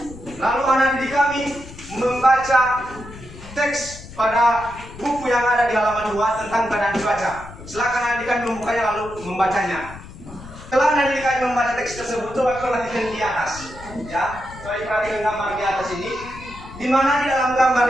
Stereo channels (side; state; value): left; noise; rumble, 16 dB below the sound